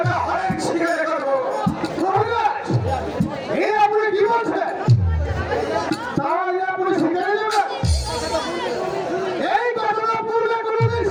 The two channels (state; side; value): identical; both; correlation 1.00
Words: অনেক শিকারে করবো। মহারাজ, এই আপনি কি বলছেন? তাহলে আপনি শিকারে যাবেন? এই ঘটনা পূর্বে কোনোদিন